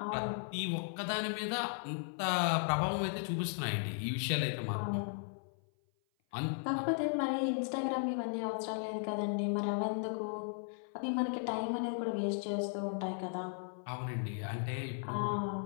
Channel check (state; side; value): silent; right; 54 dB below the other